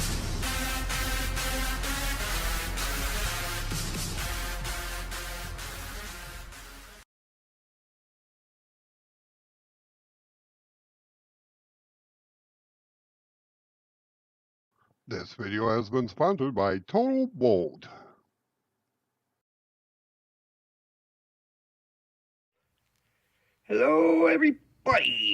This video has been sponsored by trytotalb. Hello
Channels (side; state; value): both; identical; correlation 1.00